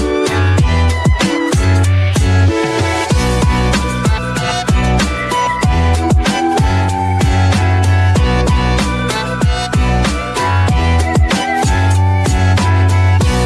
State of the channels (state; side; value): identical; both; correlation 1.00